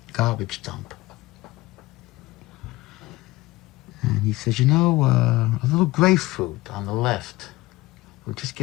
garbage dump. And he says, you know, a little grapefruit on the left will just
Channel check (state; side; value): quieter; right; 19.5 dB